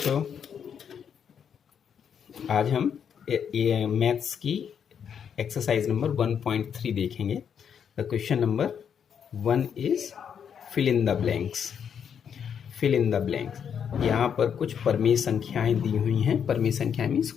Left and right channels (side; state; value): right; quieter; 7.8 dB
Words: आज हम मैथ्स की एक्सरसाइज नंबर 1.3 देखेंगे। The question number 1 is fill in the blanks. Fill in the blanks, यहाँ पर कुछ परमेय संख्याएं दी हुई हैं। परमेय संख्याएं मीन्स